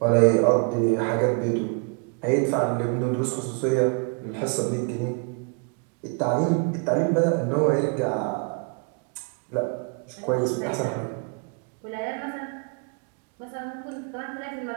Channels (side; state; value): left; quieter; 36.5 dB